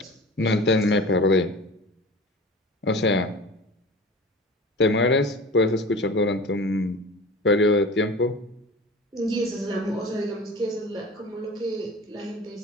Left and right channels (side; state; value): both; normal; correlation 0.37